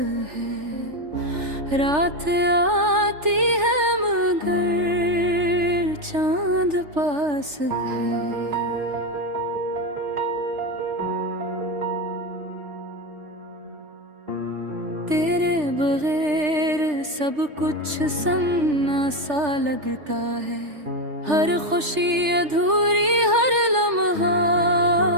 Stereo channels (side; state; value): left; late; 3.4 ms